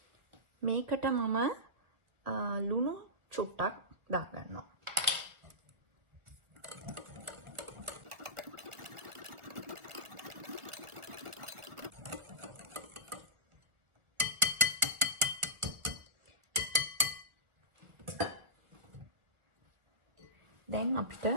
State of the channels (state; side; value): late; left; 1.6 ms